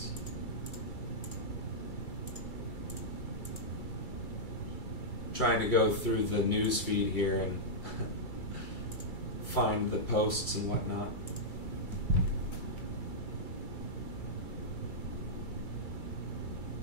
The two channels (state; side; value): late; right; 2.3 ms